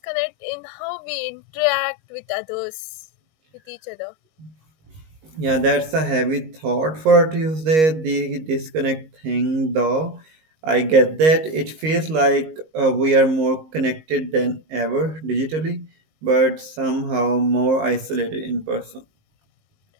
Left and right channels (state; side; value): late; left; 19 ms